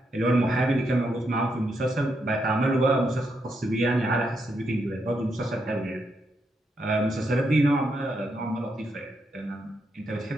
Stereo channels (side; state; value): both; normal; correlation 0.80